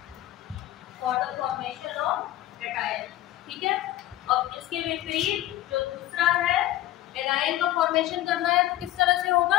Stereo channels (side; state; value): right; quieter; 14.6 dB